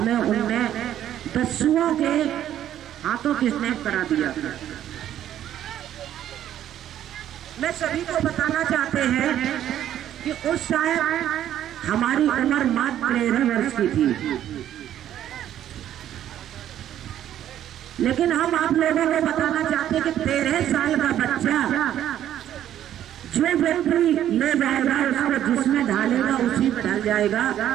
उनने दस्युओं के हाथों किडनैप करा दिया था। मैं सभी को बताना चाहते हैं कि उस शायद हमारी उम्र मात्र 13 वर्ष की थी, लेकिन हम आप लोगों को बताना चाहते हैं कि 13 साल का बच्चा जो व्यक्ति ले जाएगा उसको जिसमें ढालेगा उसी में ढल जाएगा।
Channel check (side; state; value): left; quieter; 11.3 dB